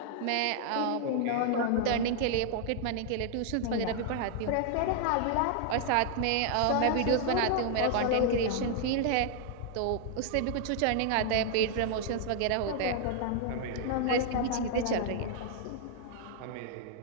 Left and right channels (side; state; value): both; different; correlation -0.01